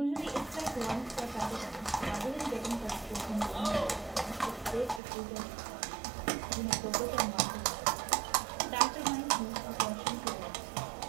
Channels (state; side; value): drops out; left; at 5.0 s